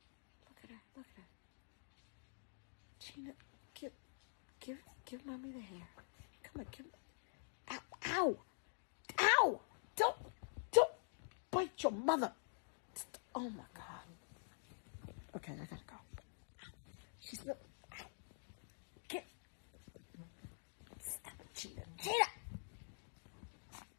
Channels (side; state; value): right; silent; digital silence